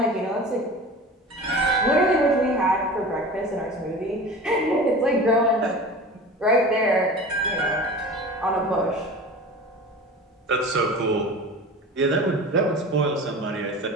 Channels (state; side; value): normal; both; correlation 0.36